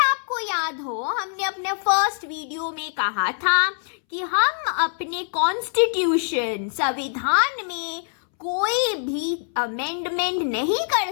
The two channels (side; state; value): right; silent; 63 dB below the other